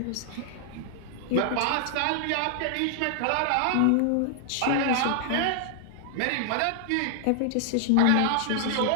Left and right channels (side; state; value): both; different; correlation -0.01